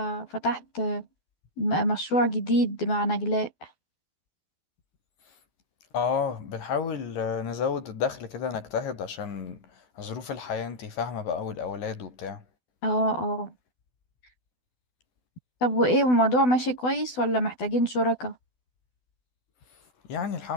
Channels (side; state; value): right; late; 12 ms